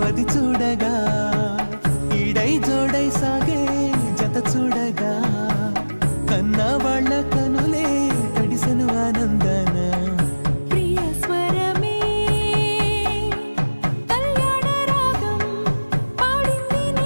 అది చూడగా ఈడై జోడై సాగే జత చూడగా కన్నా వాళ్ళ కనులే తడిసెను ఆనందన ప్రియ స్వరమే కళ్యాణ రాగం పాడింది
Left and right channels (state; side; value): inverted; both; correlation -1.00